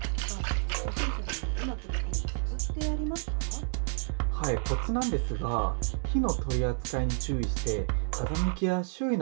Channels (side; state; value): left; silent; 58 dB below the other